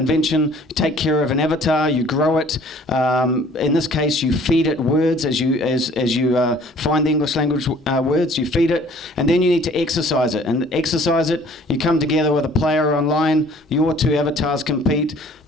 You take care of an avatar, you grow it. In this case, you feed it words as you find the English language words. You feed it, and then you need to exercise it. And exercise it, you come together with a player online. Your two avatars compete.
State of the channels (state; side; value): normal; both; correlation 0.54